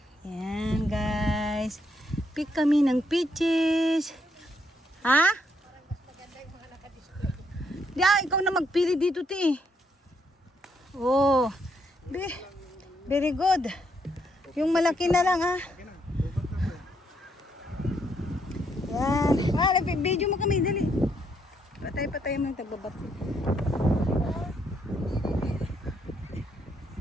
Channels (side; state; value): both; normal; correlation 0.74